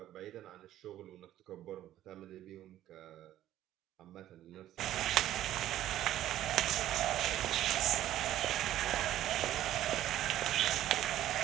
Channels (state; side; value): quieter; left; 12.9 dB